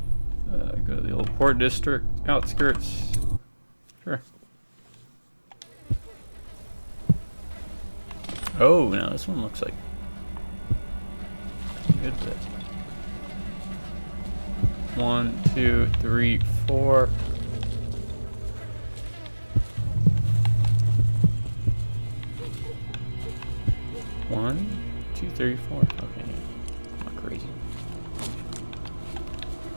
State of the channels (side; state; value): both; inverted; correlation -1.00